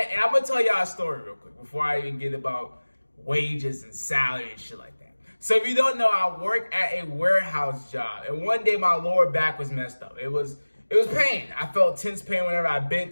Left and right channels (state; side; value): inverted; both; correlation -1.00